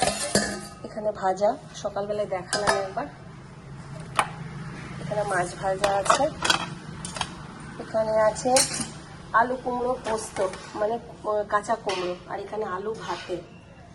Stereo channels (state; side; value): identical; both; correlation 1.00